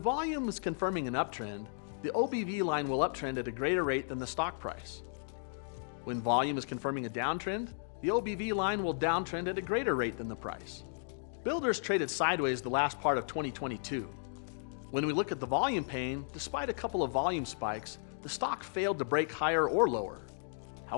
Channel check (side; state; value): right; silent; digital silence